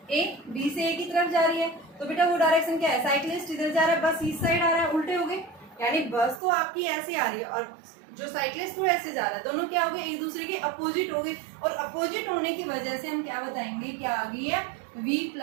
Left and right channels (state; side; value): drops out; left; at 6.4 s